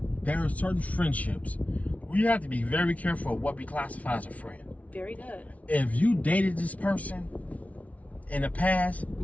there are certain friendships we have to be very careful of what we classify as a friend. Very good. If you dated this person in the past,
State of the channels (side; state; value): right; late; 0.068 ms